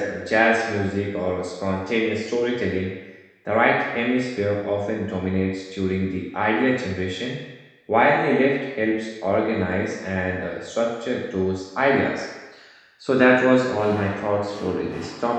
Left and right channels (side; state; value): both; identical; correlation 1.00